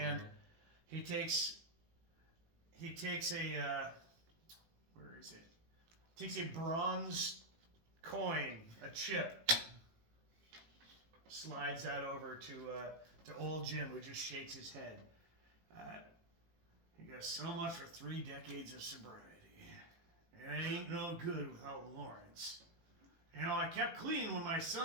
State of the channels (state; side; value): late; left; 18 ms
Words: he takes a where is it? Takes a bronze coin, a chip, slides that over to old Jim, who just shakes his head. He goes, "So much for 3 decades of sobriety. It ain't no good without Lawrence. I kept clean when my